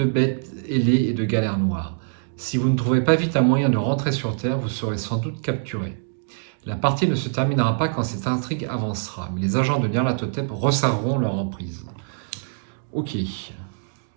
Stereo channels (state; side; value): silent; left; digital silence